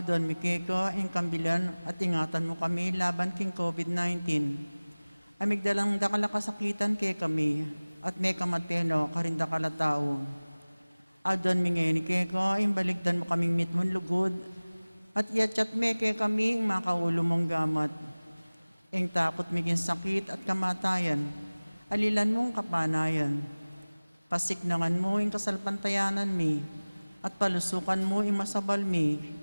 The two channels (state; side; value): inverted; both; correlation -1.00